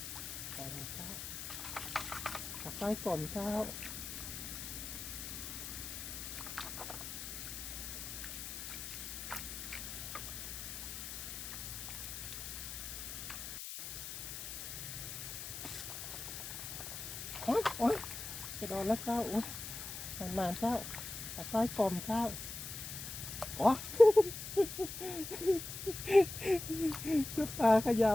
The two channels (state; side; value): noise; left; hiss, 7 dB below the sound